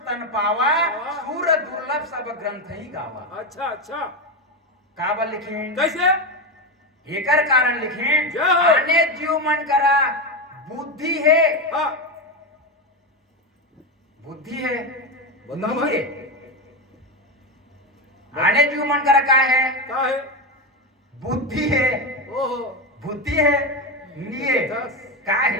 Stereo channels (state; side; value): normal; both; correlation 0.13